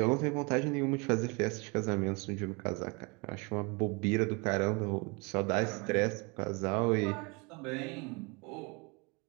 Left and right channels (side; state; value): left; quieter; 29.3 dB